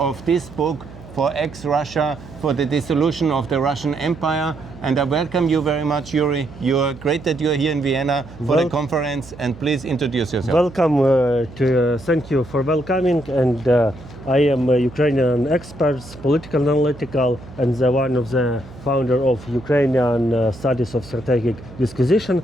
of this book for ExRussia, for the dissolution of the Russian Empire. And I welcome you very much, Iuri. You're great that you're here in Vienna for the conference, and please introduce yourself. Welcome, thank you for welcoming, and I am a Ukrainian expert, political analytical, and one of the founder of Ukrainian Studies of Strategic Disquisition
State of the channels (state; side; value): noise; right; hum, 18 dB below the sound